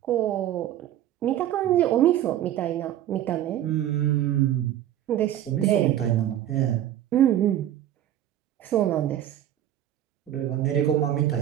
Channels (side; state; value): left; quieter; 11.9 dB